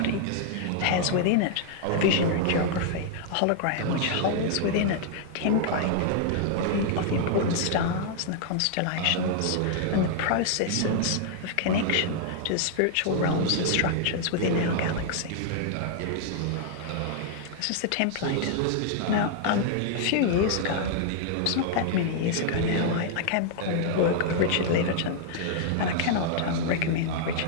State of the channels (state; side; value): different; both; correlation -0.01